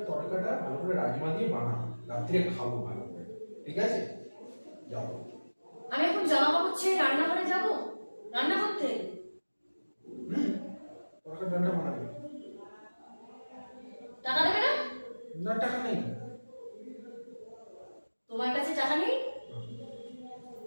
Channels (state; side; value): inverted; both; correlation -1.00